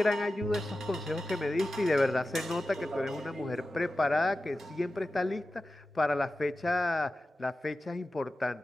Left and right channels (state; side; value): normal; both; correlation 0.94